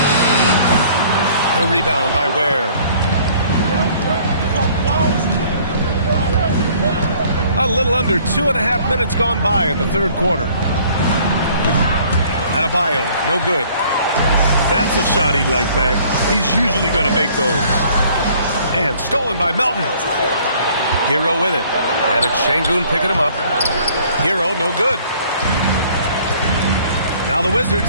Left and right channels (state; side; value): inverted; both; correlation -0.56